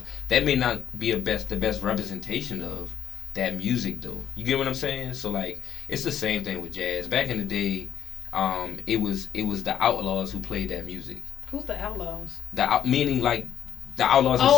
That may not be the best representation of that music though. You get what I'm saying? So like, it's the same thing with jazz. Back in the day, it was the Outlaws who played that music. Who's the Outlaws? Meaning like the outlaws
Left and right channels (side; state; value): right; quieter; 10.0 dB